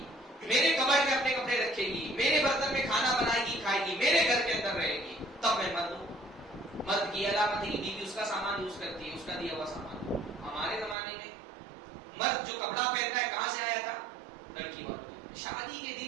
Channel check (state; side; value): drops out; left; at 11.0 s